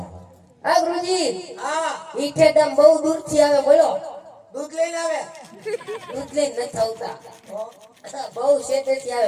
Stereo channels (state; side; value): identical; both; correlation 1.00